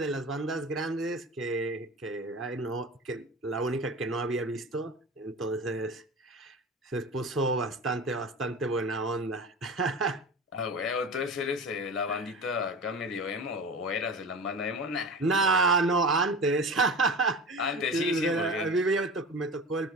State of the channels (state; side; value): normal; both; correlation 0.32